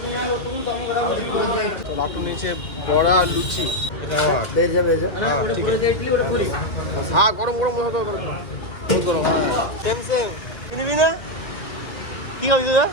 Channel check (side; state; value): right; late; 2.2 ms